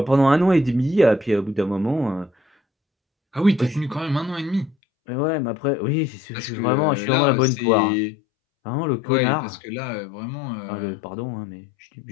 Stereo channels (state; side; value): drops out; right; at 4.8 s